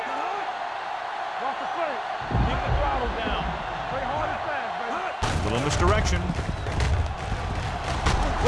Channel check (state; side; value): identical; both; correlation 1.00